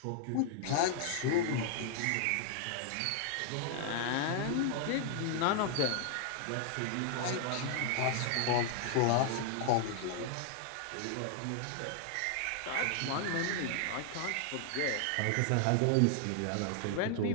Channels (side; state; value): both; different; correlation 0.00